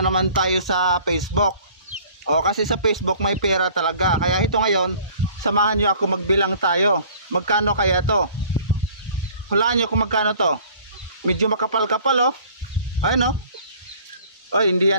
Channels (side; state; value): both; inverted; correlation -0.51